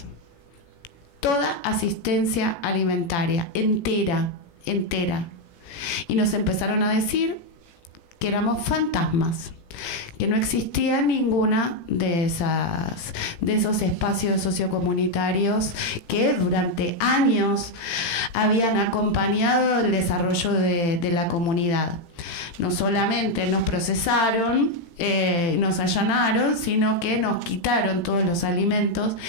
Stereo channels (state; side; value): late; right; 18 ms